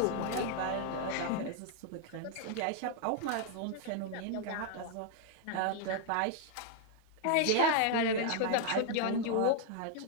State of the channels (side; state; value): both; different; correlation 0.00